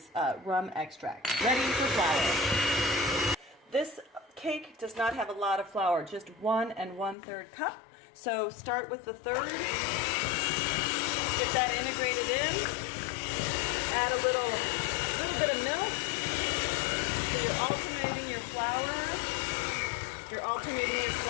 rum extract. Ready for flour. This cake does not have a lot of flour, just 1 1/3 cup. So start with the third, get that integrated in, add a little bit of milk. So you're alternating your flour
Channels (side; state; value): right; drops out; at 7.2 s